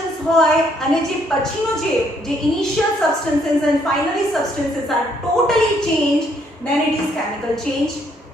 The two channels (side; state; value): both; normal; correlation 0.69